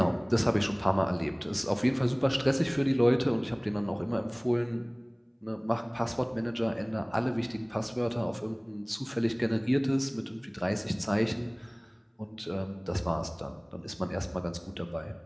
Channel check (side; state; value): both; identical; correlation 1.00